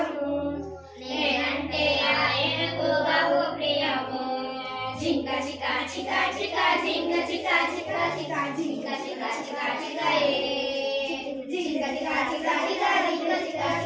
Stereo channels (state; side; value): identical; both; correlation 1.00